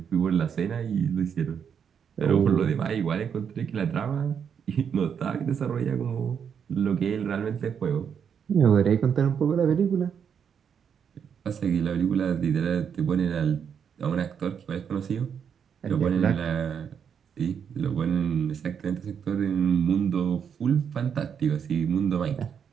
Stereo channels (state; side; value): quieter; left; 7.5 dB